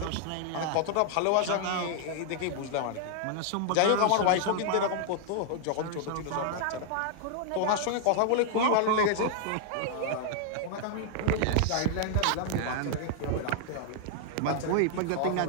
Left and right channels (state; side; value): different; both; correlation -0.01